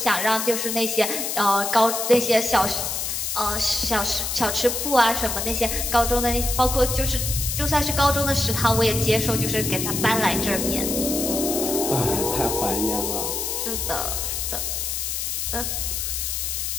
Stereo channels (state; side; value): noise; left; hiss, 2 dB below the sound